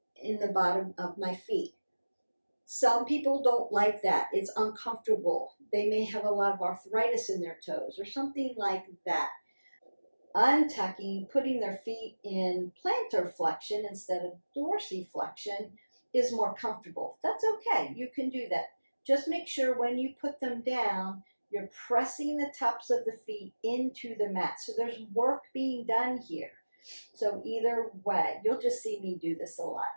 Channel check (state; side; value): inverted; both; correlation -1.00